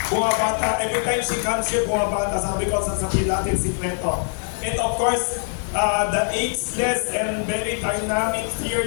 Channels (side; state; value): right; silent; 64 dB below the other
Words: Bumabata, every time she comes here, bumabata, sabi ko, sasabihin natin sikreto. And of course, the ageless and very dynamic,